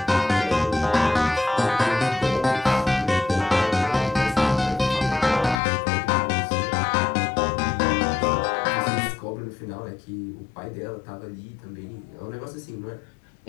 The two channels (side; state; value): right; drops out; at 5.6 s